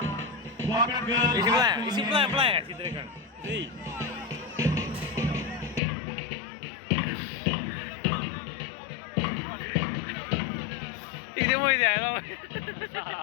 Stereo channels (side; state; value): right; drops out; at 5.8 s